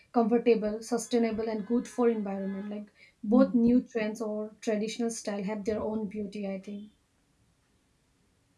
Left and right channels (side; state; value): both; identical; correlation 1.00